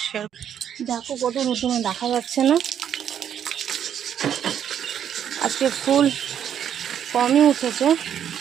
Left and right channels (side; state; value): left; quieter; 9.2 dB